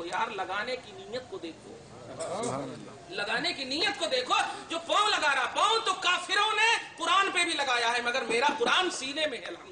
यार, लगाने की नीयत को देखो, लगाने की नीयत को देखो। जो पाँव लगा रहा, पाँव तो काफिरों ने कुरान पे भी लगाया है, मगर मेरा कुरान सीने में है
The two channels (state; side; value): identical; both; correlation 1.00